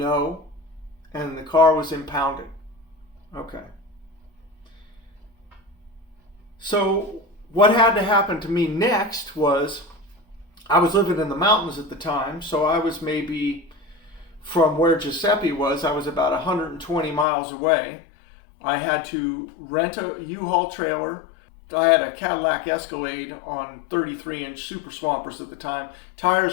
And the car was impounded. Okay. So what had to happen to me next was, I was living in the mountains at the time, so I was maybe from where Giuseppe was, I was about 120 miles away. I had to rent a U-Haul trailer. I had a Cadillac Escalade on 33-inch Super Swampers at the time.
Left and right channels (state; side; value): drops out; right; at 17.2 s